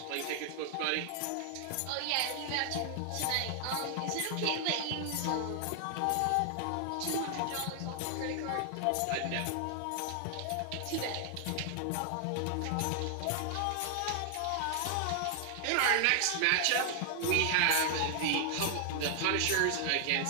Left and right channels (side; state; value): both; different; correlation 0.00